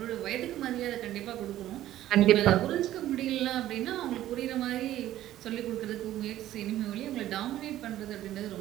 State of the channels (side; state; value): left; quieter; 13.5 dB